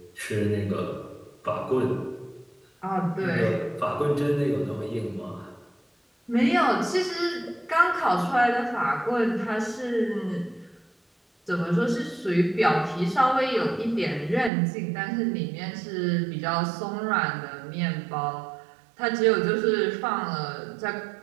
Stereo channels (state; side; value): drops out; left; at 14.5 s